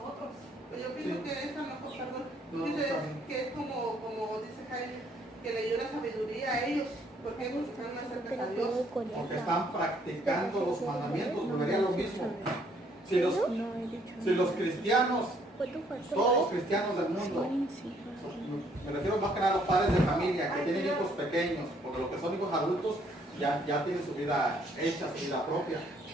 Pues yo pienso que esa que es como dice Jaime, que le dio la sabiduría a ellos, porque ellos están más cerca a Dios. Porque están practicando los mandamientos, volvería a lo mismo. Si los cristianos, todos los cristianos del mundo, me refiero más que nada a los padres de familia que tienen hijos pequeños, porque los que son hijos adultos ya tienen su vida hecha, su vida propia.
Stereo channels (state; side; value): normal; both; correlation 0.66